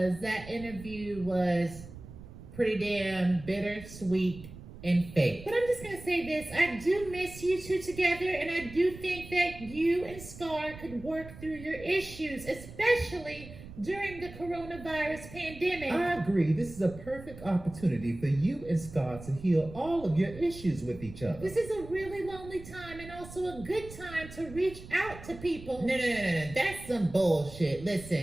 that interview was pretty damn bittersweet and fake. But I'm just going to say this. I do miss you two together, and I do think that you and Scar could work through your issues, especially during the coronavirus pandemic. I agree. This is a perfect opportunity for you and Scar to heal all of your issues with each other. This is a really lonely time and also a good time to reach out to people. No. That's some bullshit.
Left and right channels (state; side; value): noise; right; rumble, 15 dB below the sound